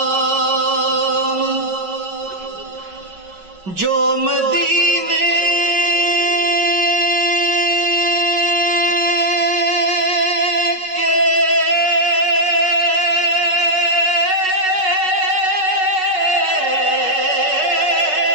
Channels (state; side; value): late; left; 5.4 ms